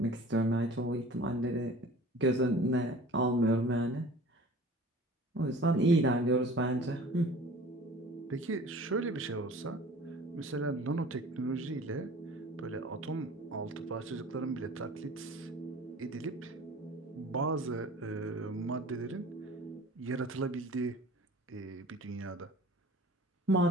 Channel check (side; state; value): both; normal; correlation 0.44